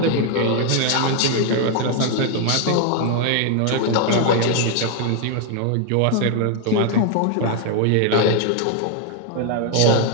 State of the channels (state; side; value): different; both; correlation 0.01